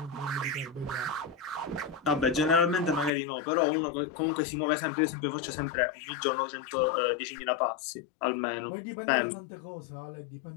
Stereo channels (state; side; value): drops out; right; at 3.1 s